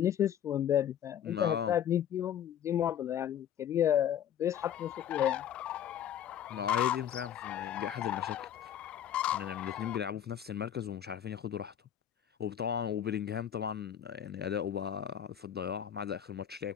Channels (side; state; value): right; quieter; 9.9 dB